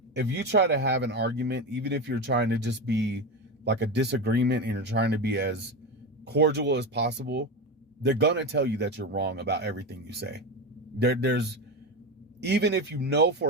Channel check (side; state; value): both; normal; correlation 0.19